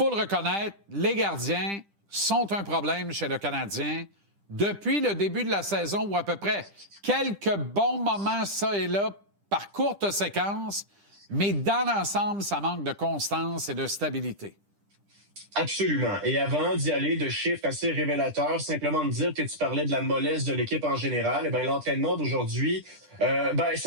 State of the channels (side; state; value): left; late; 10 ms